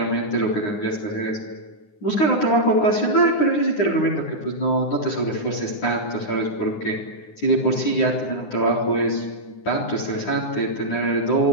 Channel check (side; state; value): right; late; 9.7 ms